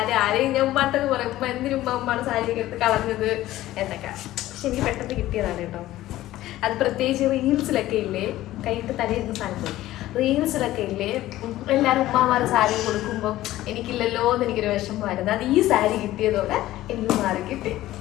ആരെയും ഞാൻ ഉമ്മാട്ടൊക്കെ പറയും, ഉമ്മ എന്തിനും ഉമ്മയുടെ സാരിയൊക്കെ എടുത്ത് കളഞ്ഞത് എന്നൊക്കെ. പക്ഷെ എനിക്ക് പെട്ടെന്ന് കിട്ടിയതാണ് കേട്ടോ. അത് പ്രത്യേകിച്ച് റീൽസിലൊക്കെ ഇല്ലേ, കൈയിട്ട് തലയിരുന്ന സാധനത്തിൽ റീൽസിലൊക്കെ ഇല്ലേ, എല്ലാവരും ഉമ്മമാരുടെ സാരി കൊടുക്കുമ്പോൾ എനിക്കില്ലല്ലോ എന്ന് എനിക്കൊരു വിഷമമായിരുന്നു. അത് ഈ സാരി കിട്ടിയതോടെ എനിക്ക് മാറി കിട്ടി.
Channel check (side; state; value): right; quieter; 15.3 dB